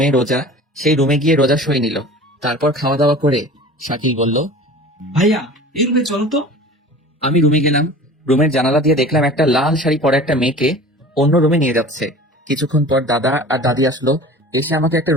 রোজা, সেই রুমে গিয়ে রোজা সই নিল। তারপর খাওয়া দাওয়া করে শাকিল বলল, ভাইয়া, এই রুমে চলো তো। আমি রুমে গেলাম। রুমের জানালা দিয়ে দেখলাম একটা লাল শাড়ি পরা একটা মেয়েকে অন্য রুমে নিয়ে যাচ্ছে। কিছুক্ষণ পর দাদা আর দাদি আসলো, এসে আমাকে একটা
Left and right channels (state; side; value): normal; both; correlation 0.40